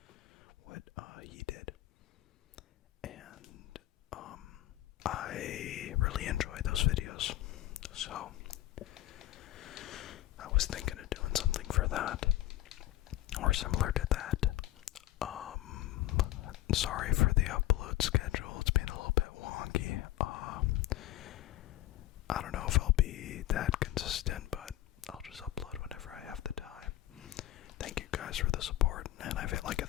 what he did. And I really enjoy those videos. So I was thinking of doing something for that, or similar to that. Sorry for the upload schedule, it's been a little bit wonky. I don't know if I'll be that consistent, but I'll just upload whenever I have the time. Thank you guys for the support, and I've hit like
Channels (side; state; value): right; quieter; 14.8 dB